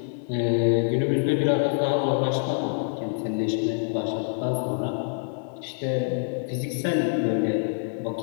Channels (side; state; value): right; silent; digital silence